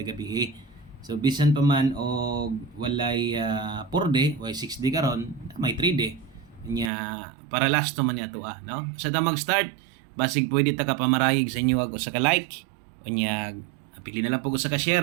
gabi. So bisan pa man og walay 4 day, way 6 day karon, may 3 day. Nya para last man niya to no. Sa ta mag-start, basig pwede ta ka pamarayig sa inyo og sa ka like. Unya pili na lang po sa ka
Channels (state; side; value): drops out; left; at 6.9 s